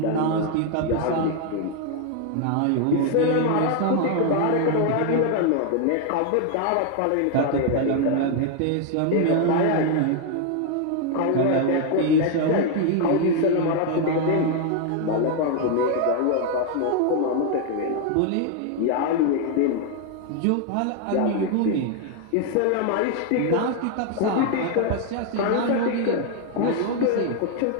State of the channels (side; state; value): both; different; correlation 0.01